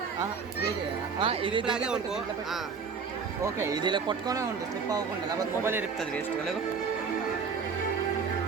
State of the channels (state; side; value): quieter; left; 5.6 dB